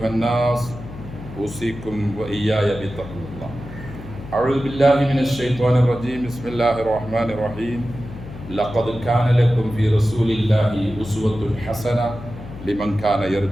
الناس أوصيكم وإياي بتقوى الله أعوذ بالله من الشيطان الرجيم بسم الله الرحمن الرحيم لقد كان لكم في رسول الله أسوة حسنة لمن كان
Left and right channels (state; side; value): noise; left; hum, 13 dB below the sound